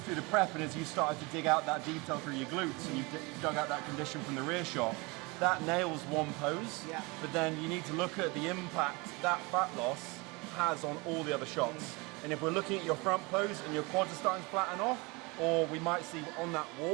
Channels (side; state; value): left; quieter; 26.4 dB